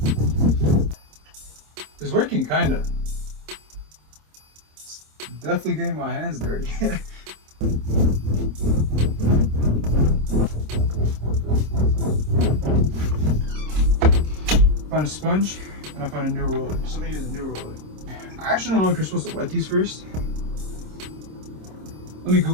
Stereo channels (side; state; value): left; late; 26 ms